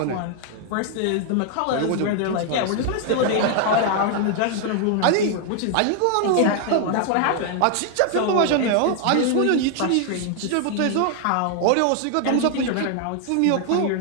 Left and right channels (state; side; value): different; both; correlation 0.00